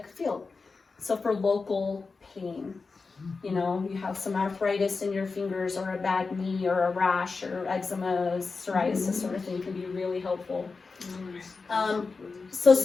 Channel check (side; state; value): right; quieter; 4.3 dB